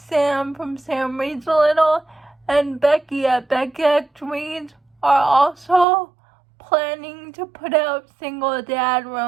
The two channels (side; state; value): left; drops out; at 5.9 s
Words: from Sam Reads a Little, and Becky at Becky Reads are also planning to put out single dad